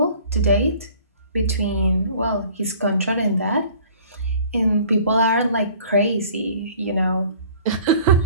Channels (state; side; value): inverted; both; correlation -0.51